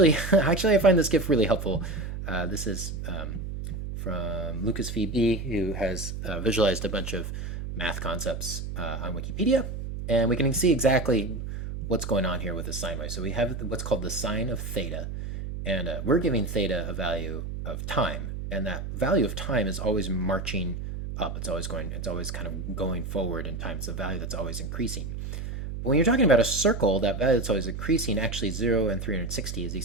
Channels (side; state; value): right; noise; hum, 6 dB below the sound